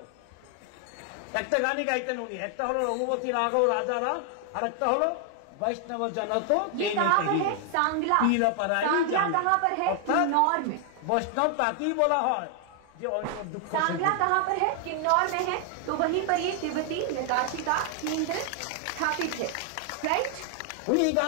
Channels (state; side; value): different; both; correlation 0.00